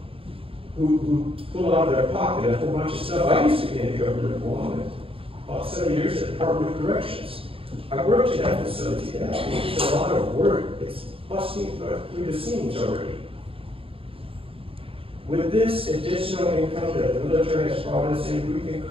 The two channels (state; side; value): late; left; 0.27 ms